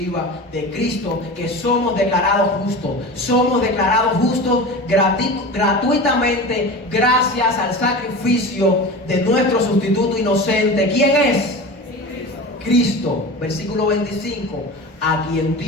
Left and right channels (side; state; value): both; normal; correlation 0.31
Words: de Cristo que somos declarados justos. Somos declarados justos gratuitamente gracias al sacrificio de nuestro sustituto inocente. ¿Quién es? Cristo, versículo 25, a quien